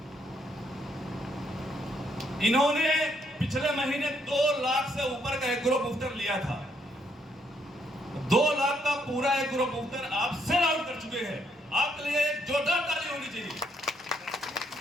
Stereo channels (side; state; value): both; normal; correlation 0.72